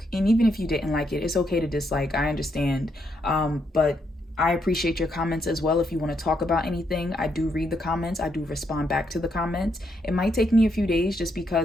And even if you didn't like it, it's okay to dislike. I understand. But I appreciate your comments as well. If you want to talk about anything, I do read the comments. I do respond back to the comments. It might take me a few days just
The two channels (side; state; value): both; normal; correlation 0.77